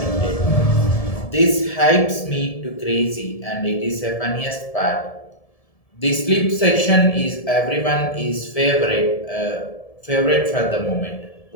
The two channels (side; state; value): right; late; 1.7 ms